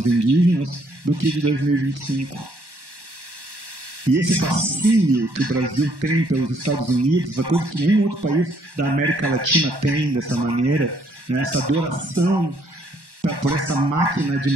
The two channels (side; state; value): left; late; 1.1 ms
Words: indígenas, do que de 2025. E esse fascínio que o Brasil tem pelos Estados Unidos, a coisa que nenhum outro país da América Latina tem dessa maneira, né? Essa adoração por essa máquina de